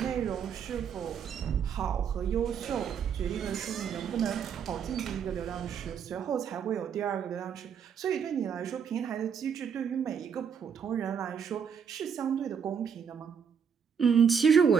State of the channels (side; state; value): left; quieter; 7.2 dB